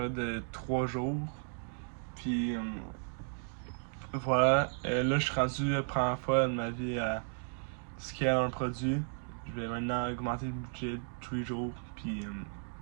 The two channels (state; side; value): silent; left; 55 dB below the other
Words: de 3 jours. Puis voilà, là je suis rendu la première fois de ma vie à scaler un produit. Je vais maintenant augmenter le budget tous les jours. Puis